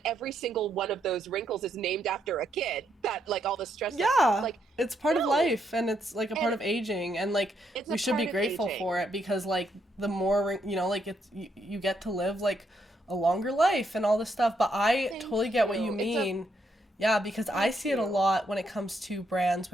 every single one of those wrinkles is named after a kid, that, like, all the stress that, Yeah. like, It's part of no. life and it's like a part And of aging and like it's we a should be part of grateful for aging. it because like the more like you get to live like a longer life and all this stuff, but I Thank totally get what you you. mean. Yeah, because I Thank see it a you. lot when it comes to brands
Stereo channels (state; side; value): normal; both; correlation 0.77